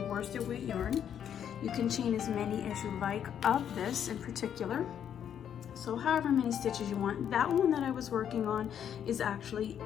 worsted weight yarn. You can chain as many as you like of this in particular. So however many stitches you want. That one that I was working on is actually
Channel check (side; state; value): right; quieter; 9.1 dB